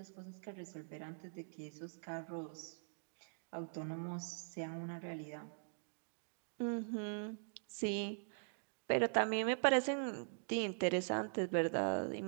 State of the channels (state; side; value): silent; left; digital silence